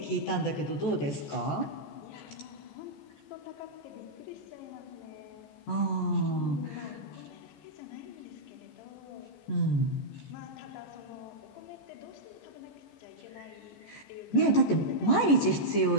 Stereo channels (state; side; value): late; right; 14 ms